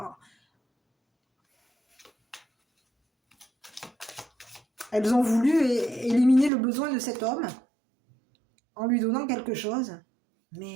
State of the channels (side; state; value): left; drops out; at 6.5 s